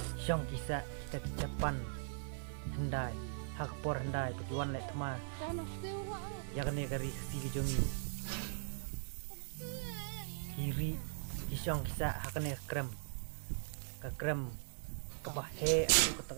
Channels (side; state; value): left; silent; 51 dB below the other